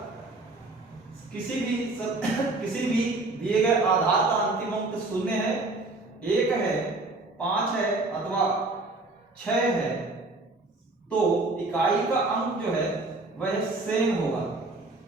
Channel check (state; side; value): quieter; left; 3.1 dB